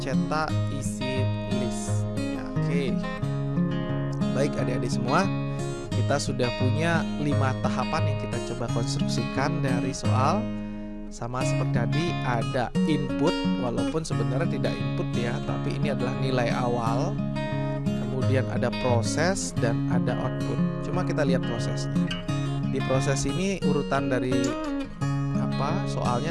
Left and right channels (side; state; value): both; identical; correlation 1.00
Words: Cetak isi list. Ya, oke. Baik adik-adik semua, kita sudah punya 5 tahapan yang kita coba konstruksikan dari soal. Sama seperti tadi, ada input, walaupun sebenarnya tidak input ya, tapi ini adalah nilai awal. Kemudian ada proses dan ada output. Cuma kita lihat prosesnya. Di proses ini urutan dari soalnya